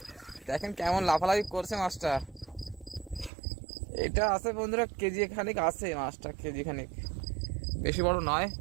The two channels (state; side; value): drops out; left; at 3.3 s